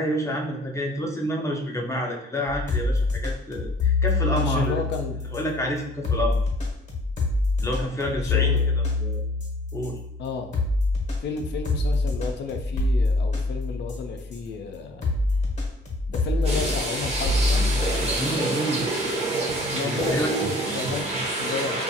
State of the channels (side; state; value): both; normal; correlation 0.53